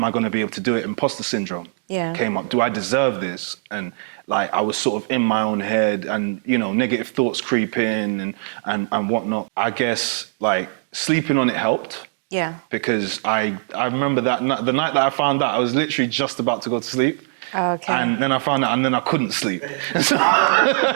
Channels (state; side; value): silent; left; digital silence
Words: I going to be able to do it? Imposter syndrome came up. Do I deserve this? And I was sort of in my own head and, negative thoughts creep in and whatnot. I guess sleeping on it helped. Yeah. Because I remember that the night that I found out, I was literally just about to go to sleep. Okay. And then I found out, and then I couldn't sleep.